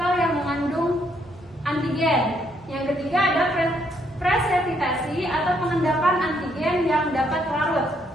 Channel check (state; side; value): normal; both; correlation 0.72